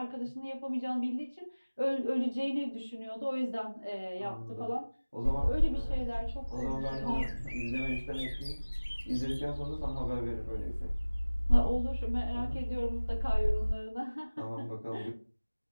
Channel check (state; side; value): inverted; both; correlation -1.00